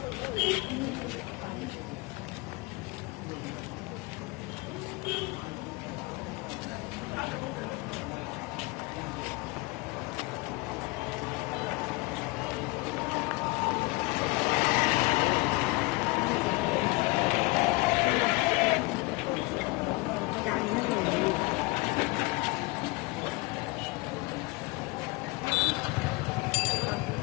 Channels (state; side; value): quieter; right; 24.5 dB